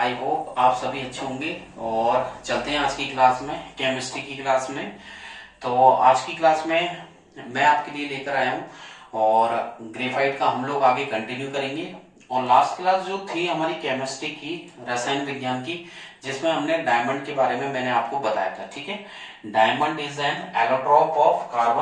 होप आप सभी अच्छे होंगे। और चलते हैं आज की क्लास में, केमिस्ट्री की क्लास में। तो आज की क्लास में मैं आपके लिए लेकर आया हूँ और ग्रेफाइट का हम लोग आगे कंटिन्यू करेंगे। और लास्ट क्लास जो थी हमारी केमिस्ट्री की, रसायन विज्ञान की, जिसमें हमने डायमंड के बारे में मैंने आपको बताया था। ठीक है, diamond is an allotrope of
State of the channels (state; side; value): identical; both; correlation 1.00